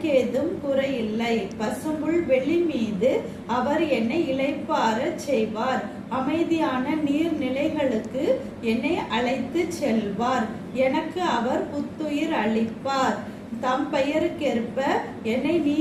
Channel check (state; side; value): identical; both; correlation 1.00